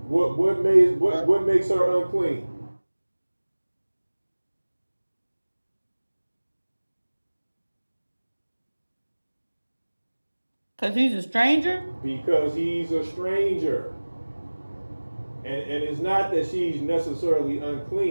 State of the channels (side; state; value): both; inverted; correlation -1.00